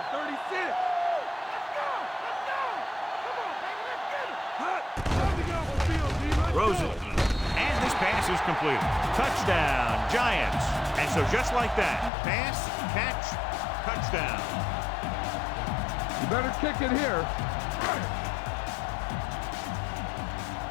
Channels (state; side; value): drops out; right; at 12.1 s